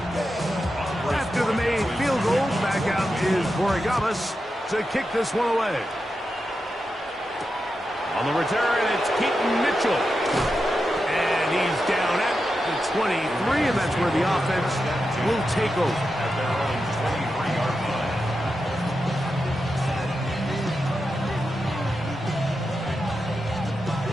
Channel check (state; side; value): normal; both; correlation 0.89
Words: After the made field goal, back out is Borregamas to kick this one away. On the return, it's Keaton Mitchell. And he's down at the 23, and that's where the offense will take over. At their own 23-yard line.